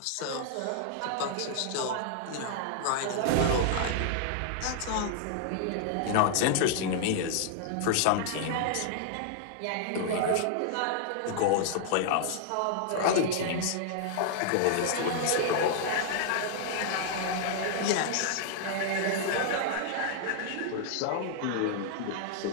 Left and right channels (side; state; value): both; different; correlation -0.01